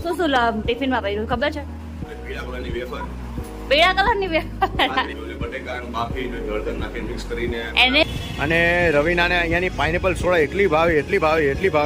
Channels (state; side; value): identical; both; correlation 1.00